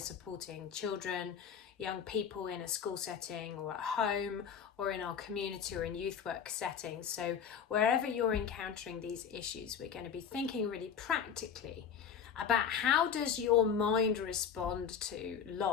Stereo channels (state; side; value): quieter; right; 7.6 dB